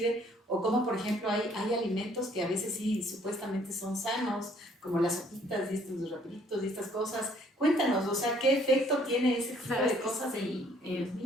o cómo, por ejemplo, hay alimentos que a veces sí supuestamente son sanos, como las sopitas y estos rapiditos y estas cosas. Cuéntanos, o sea, ¿qué efecto tiene ese tipo de cosas en los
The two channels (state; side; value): normal; both; correlation 0.62